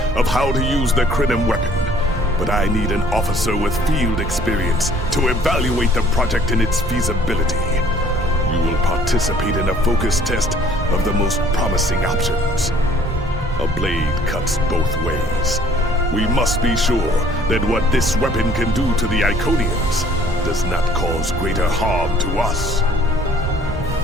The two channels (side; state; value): both; normal; correlation 0.56